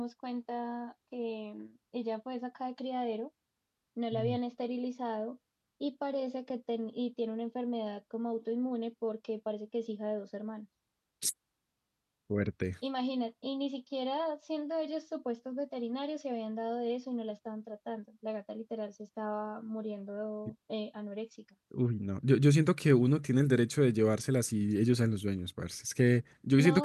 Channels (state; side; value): identical; both; correlation 1.00